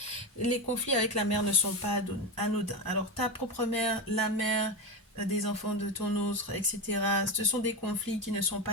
Les conflits avec la mère ne sont pas anodins. Alors ta propre mère, la mère des enfants de ton autre, etc. Ce sont des conflits qui ne sont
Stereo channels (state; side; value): normal; both; correlation 0.16